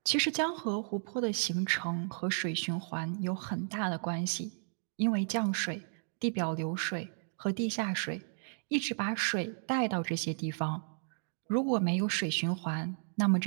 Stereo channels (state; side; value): silent; left; digital silence